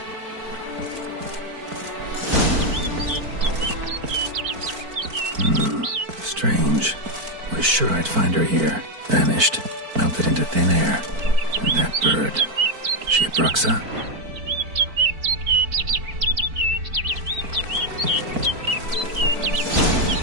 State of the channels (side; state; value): left; late; 4.5 ms